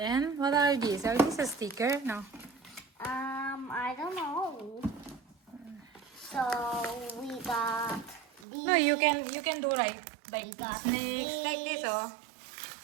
what are these? Are these a sticker? No. I don't know. So we got these. No, you can do right. Like We got snakes, like this, these. oh.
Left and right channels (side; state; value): left; drops out; at 8.5 s